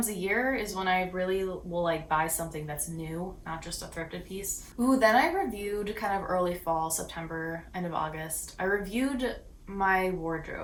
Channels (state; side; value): identical; both; correlation 1.00